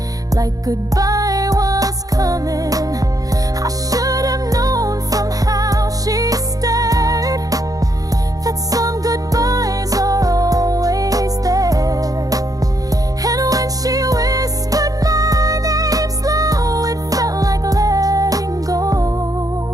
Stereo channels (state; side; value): late; left; 0.17 ms